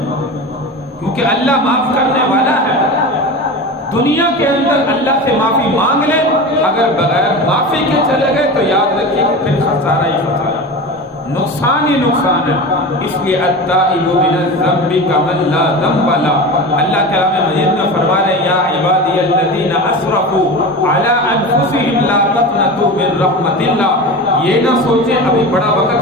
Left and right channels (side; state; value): both; normal; correlation 0.29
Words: کیونکہ اللہ معاف کرنے والا ہے۔ دنیا کے اندر اللہ سے معافی مانگ لے، اگر بغیر معافی کے چلے گئے تو یاد رکھیے کہ پھر خسارہ ہی خسارہ، نقصان ہی نقصان ہے۔ اس لیے التائب من الذنب کمن لا ذنب له، اللہ کلام مجید میں فرما رہے ہیں یا عبادی الذین اسرفوا علی انفسہم لا تقنطوا من رحمت اللہ۔ یہ نہ سوچیں ابھی بڑا